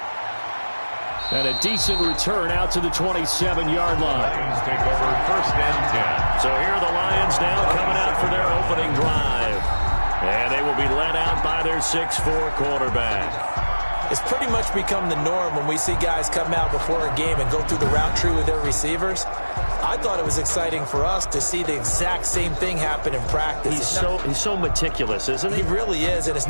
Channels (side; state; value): both; inverted; correlation -1.00